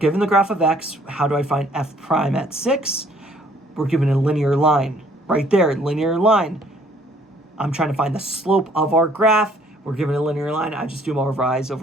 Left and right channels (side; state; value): both; normal; correlation 0.61